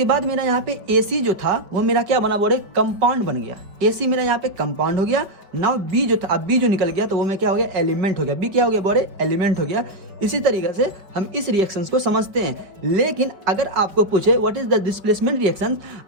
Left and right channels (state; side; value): late; left; 5.2 ms